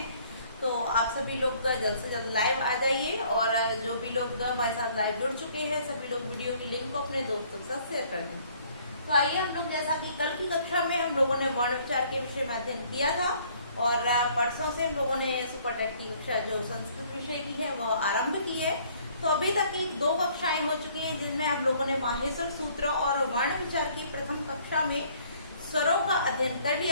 तो आप सभी लोग जल्द से जल्द लाइव आ जाइए और जो भी लोग हमारे साथ लाइव जुड़ चुके हैं सभी लोग वीडियो की लिंक को अपने दोस्तों के साथ शेयर कर दें। तो आइए हम लोग, जैसा कि कल की कक्षा में हम लोगों ने वर्ण विचार के विषय में अध्ययन किया था और परसों से हम लोगों ने सुपर टेट की कक्षा जो संस्कृत विषय की है वो आरंभ की है। तो अभी तक की 2 कक्षाएं हो चुकी हैं, जिनमें हम लोगों ने माहेश्वर सूत्र और वर्ण विचार की प्रथम कक्षा में स्वरों का अध्ययन कर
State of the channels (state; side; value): inverted; both; correlation -0.60